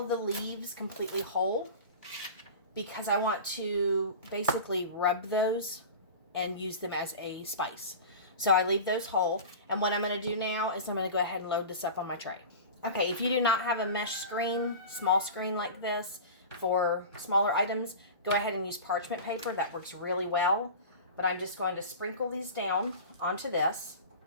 the leaves completely whole because I want to basically rub those and use them as a spice. So I leave those whole. And what I'm going to do now is I'm going to go ahead and load this up on my tray. Okay, if you do not have a mesh screen, small screen like this for smaller items, go ahead and use parchment paper. That works really well. But I'm just going to sprinkle these down onto this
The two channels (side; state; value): both; inverted; correlation -0.33